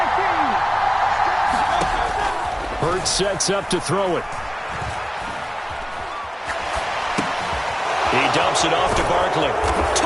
Hurts sets up to throw it. He dumps it off to Barkley.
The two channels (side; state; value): both; identical; correlation 1.00